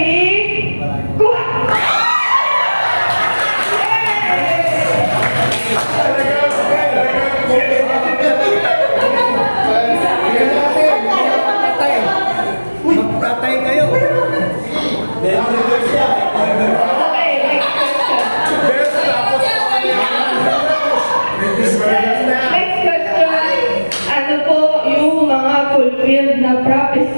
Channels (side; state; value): both; inverted; correlation -1.00